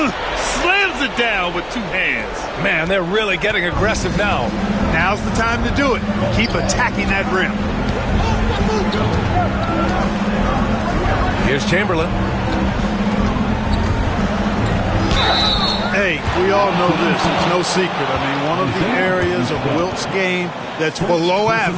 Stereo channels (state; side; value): identical; both; correlation 1.00